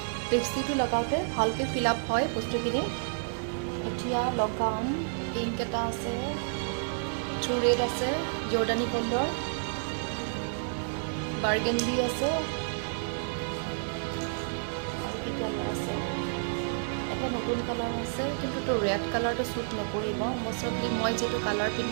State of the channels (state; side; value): silent; left; digital silence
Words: লিপষ্টিকটো লগাওঁতে ভালকৈ ফিল আপ হয় বস্তুখিনি। এতিয়া লগাম, পিংক এটা আছে, ট্ৰু ৰেড আছে, জৰ্ডানী গ'ল্ডৰ, বাৰ্গেণ্ডি আছে, আৰু কি কালাৰ আছে, এটা নতুন কালাৰ আছে, কিন্তু ৰেড কালাৰটো শ্বুট নকৰিব। মষ্টলি মই যিটো কালাৰ